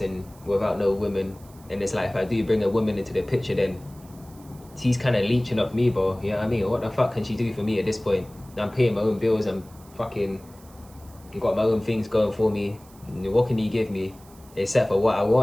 and without no women. And it's like, if I do bring a woman into the picture, then she's kind of leeching off me, bro. You know what I mean? What the fuck can she do for me at this point? I'm paying my own bills. I'm fucking got my own things going for me. What can you give me? Except for what I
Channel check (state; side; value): noise; right; hiss, 25 dB below the sound